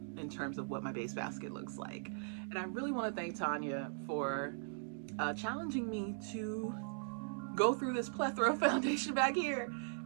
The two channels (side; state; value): left; silent; digital silence